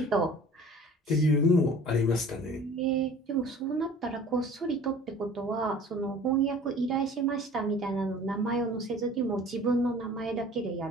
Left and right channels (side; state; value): both; normal; correlation 0.46